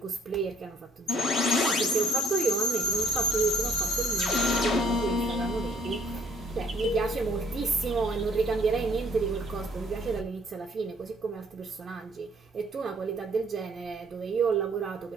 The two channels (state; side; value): normal; both; correlation 0.61